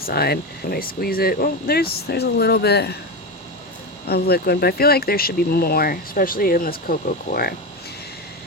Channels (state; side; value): normal; both; correlation 0.17